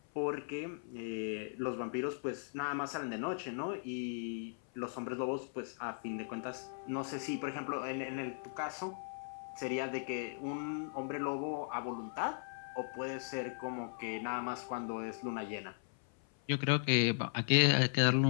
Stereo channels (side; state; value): right; silent; 53 dB below the other